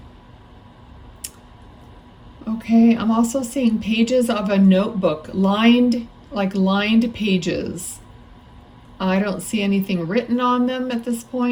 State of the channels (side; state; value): both; identical; correlation 1.00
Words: Okay, I'm also seeing pages of a notebook, lined pages. I don't see anything written on them at this